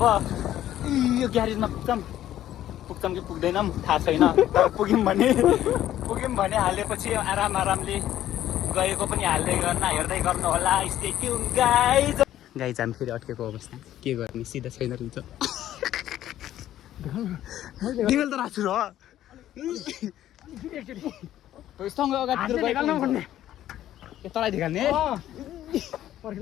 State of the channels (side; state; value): right; quieter; 12.5 dB